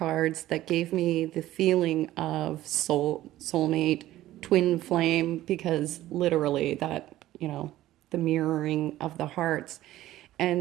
that gave me the feeling of soulmate, twin flame, because literally that, the mirroring of the hearts.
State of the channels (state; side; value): quieter; left; 14.8 dB